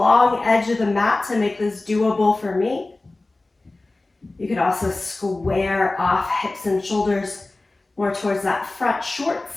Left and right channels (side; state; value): right; quieter; 3.0 dB